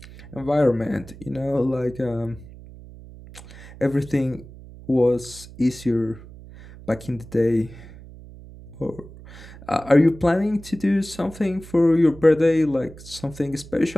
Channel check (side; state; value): right; noise; hum, 18 dB below the sound